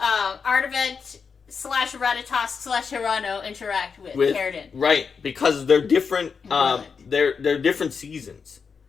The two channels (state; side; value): quieter; right; 5.7 dB